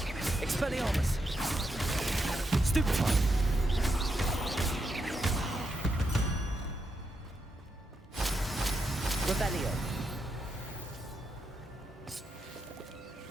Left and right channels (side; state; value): both; normal; correlation 0.83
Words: Expelliarmus. Stupid one. Revelio.